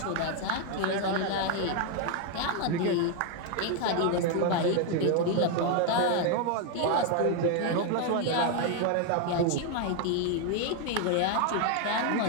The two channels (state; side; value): different; both; correlation 0.01